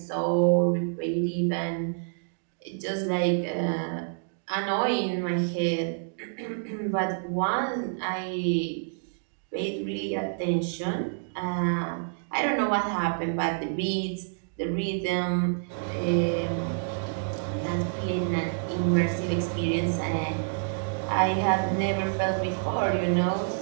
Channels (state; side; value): silent; left; digital silence